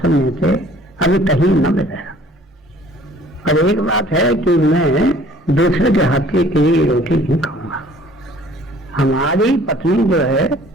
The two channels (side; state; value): both; normal; correlation 0.54